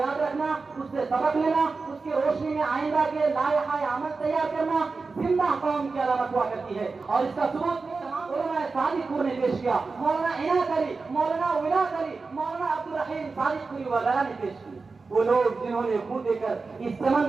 رکھنا، اس سے سبق لینا، اس کی روشنی میں آئندہ کے لائحہ عمل تیار کرنا زندہ قوم کی علامت ہوا کرتی ہے، اور اس کا ثبوت علماء صادق پور نے پیش کیا۔ مولانا عنایت علی، مولانا ولایت علی، مولانا عبدالرحیم صادق پوری وغیرہ نے پیش کی۔ وہ لوگ جنہوں نے خون دے کر اس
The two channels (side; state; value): left; quieter; 4.2 dB